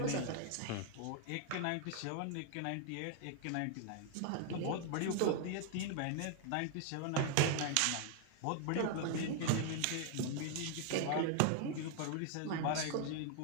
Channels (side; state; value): both; different; correlation 0.00